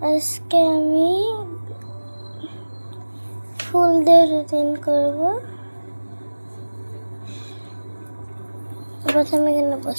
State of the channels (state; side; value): inverted; both; correlation -1.00